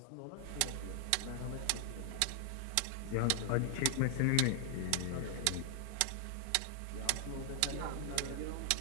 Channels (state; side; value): different; both; correlation 0.00